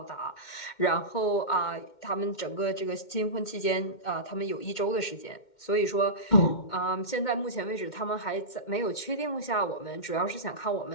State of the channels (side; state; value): right; late; 2.1 ms